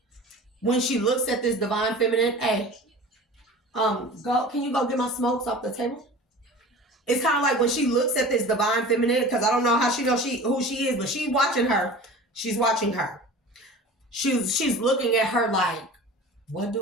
when she looks at this divine feminine, hey, can you go get my smokes off the table? It's kind of like when she looks at this divine feminine, because I don't know how she knows who she is, but she's watching her. She's watching her. She's looking at her like, what do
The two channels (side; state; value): both; normal; correlation 0.39